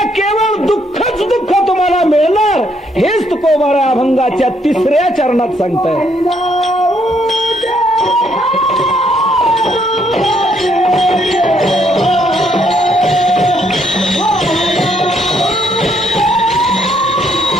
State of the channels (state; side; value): normal; both; correlation 0.71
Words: केवळ दुःखच दुःख तुम्हाला मिळणार. हेच तुकोबारा अभंगाच्या 3ऱ्या चरणात सांगताय.